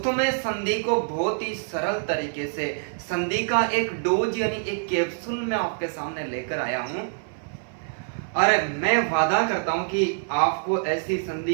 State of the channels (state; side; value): silent; left; 61 dB below the other